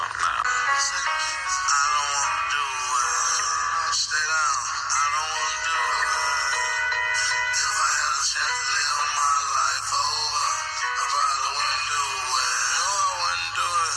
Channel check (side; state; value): both; identical; correlation 1.00